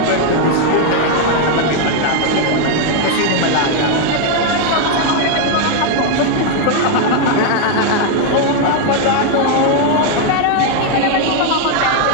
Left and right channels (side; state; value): both; different; correlation 0.01